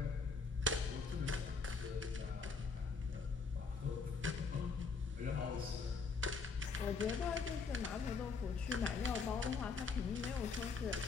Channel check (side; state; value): right; quieter; 4.7 dB